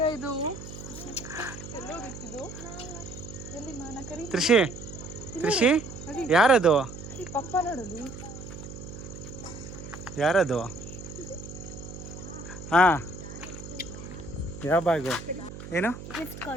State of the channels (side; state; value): right; noise; hum, 11 dB below the sound